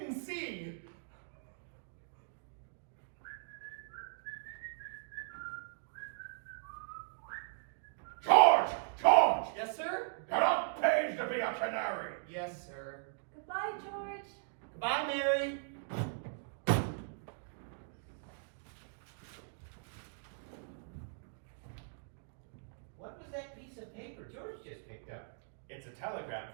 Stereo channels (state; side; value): silent; left; digital silence